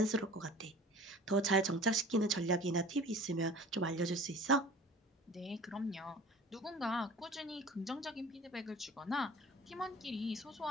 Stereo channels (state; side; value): normal; both; correlation 0.43